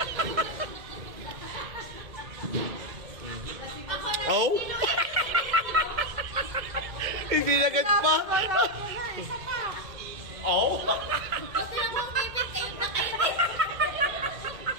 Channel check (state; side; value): late; left; 2.1 ms